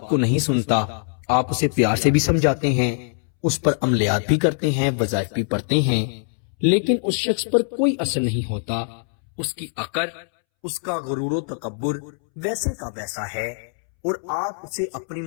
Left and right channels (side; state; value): right; silent; 64 dB below the other